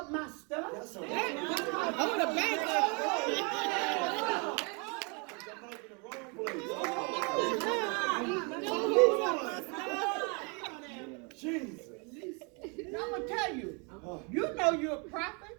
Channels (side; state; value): left; quieter; 33.5 dB